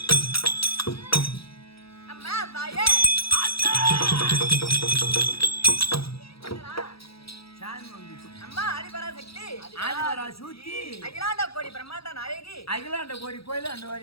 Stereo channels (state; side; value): late; right; 0.76 ms